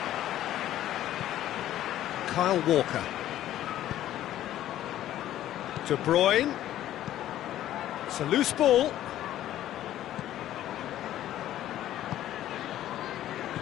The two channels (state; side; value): quieter; right; 12.8 dB